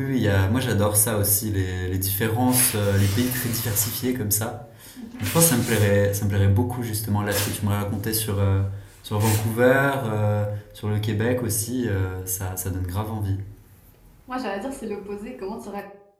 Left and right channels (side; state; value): both; identical; correlation 1.00